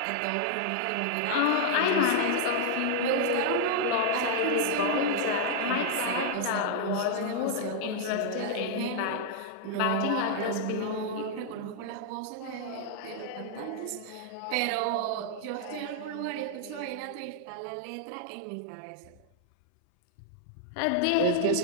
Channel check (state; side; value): different; both; correlation -0.01